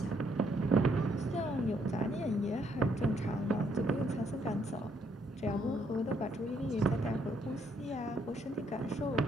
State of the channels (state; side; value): normal; both; correlation 0.71